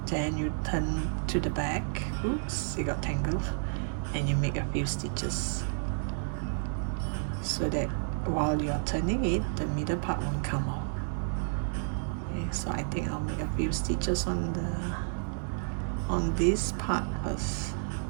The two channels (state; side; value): silent; left; digital silence